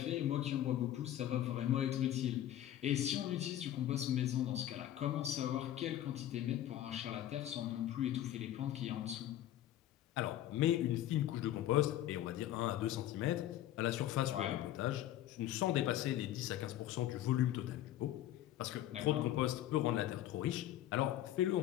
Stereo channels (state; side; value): quieter; right; 12.7 dB